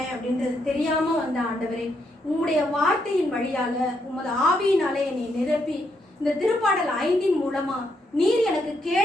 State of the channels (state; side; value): normal; both; correlation 0.78